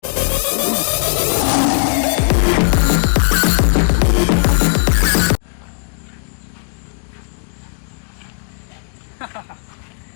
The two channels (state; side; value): silent; right; 68 dB below the other